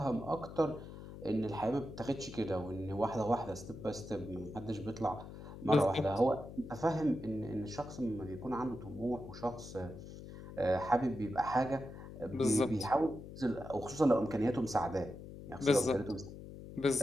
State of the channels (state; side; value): noise; left; hum, 13 dB below the sound